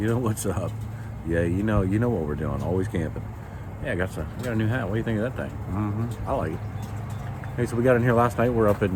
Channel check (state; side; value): identical; both; correlation 1.00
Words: know what's up? Yeah, you know what we're doing. Always camping. Yeah, I got a new hat. What do you think of that thing? I like it. Hey, so we got in here last night. We're up